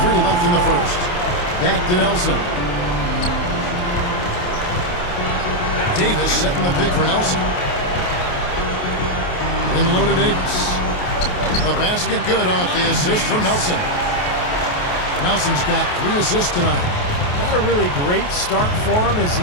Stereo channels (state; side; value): late; right; 28 ms